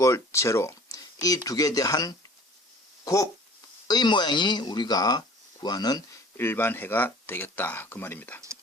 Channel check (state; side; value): normal; both; correlation 0.48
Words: 0. 이 두 개에 대한 곱의 모양이 우리가 구하는 일반해가 되겠다. 그 말입니다.